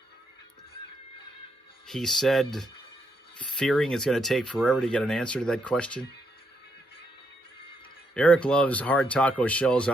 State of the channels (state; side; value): normal; both; correlation 0.78